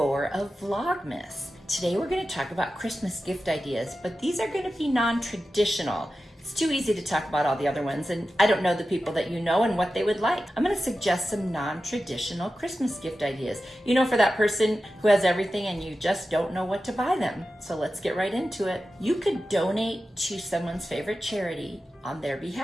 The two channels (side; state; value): both; normal; correlation 0.93